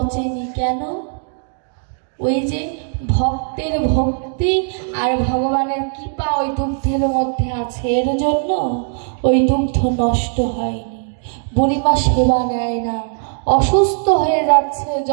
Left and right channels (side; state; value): left; silent; digital silence